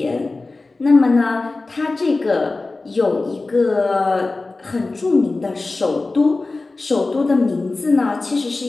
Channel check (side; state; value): right; quieter; 3.4 dB